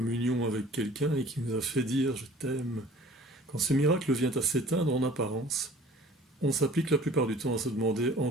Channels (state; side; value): normal; both; correlation 0.49